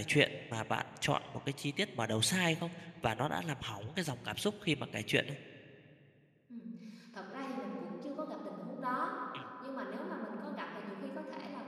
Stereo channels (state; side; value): identical; both; correlation 1.00